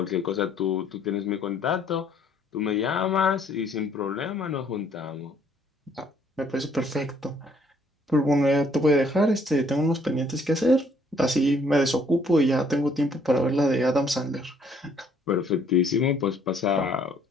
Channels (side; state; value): both; normal; correlation 0.64